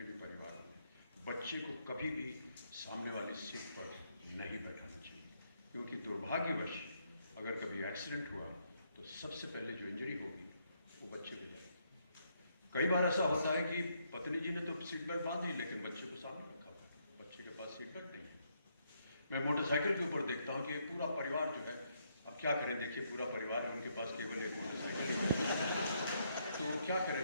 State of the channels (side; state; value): both; inverted; correlation -0.75